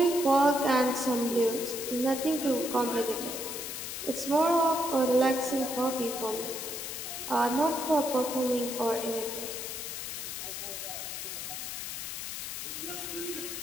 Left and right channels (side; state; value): left; noise; hiss, 6 dB below the sound